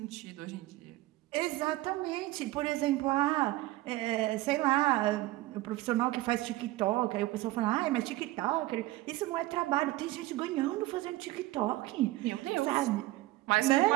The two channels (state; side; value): quieter; left; 18.0 dB